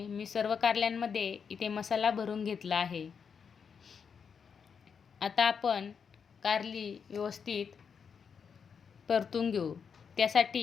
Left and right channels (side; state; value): right; quieter; 6.5 dB